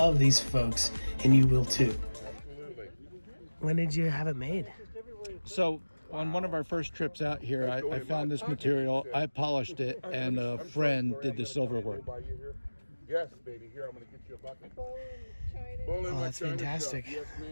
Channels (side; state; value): both; inverted; correlation -1.00